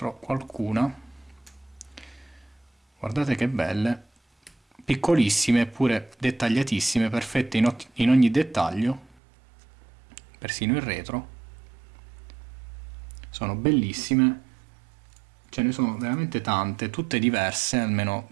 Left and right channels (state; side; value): drops out; left; at 9.2 s